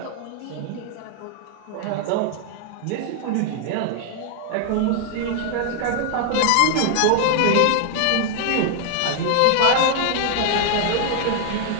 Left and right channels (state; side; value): different; both; correlation 0.00